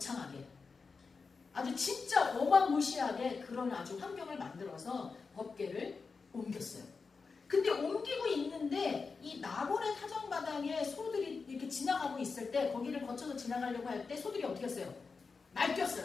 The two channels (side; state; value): right; quieter; 4.7 dB